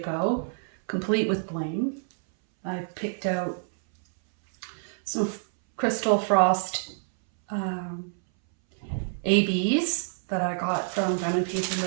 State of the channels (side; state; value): left; silent; 60 dB below the other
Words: complete with bling. I've picked out some Crystal Frost ABs that I got from Diamond Painting